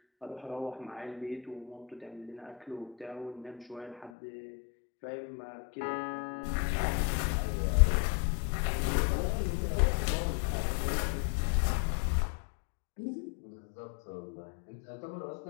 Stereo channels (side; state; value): right; drops out; at 4.1 s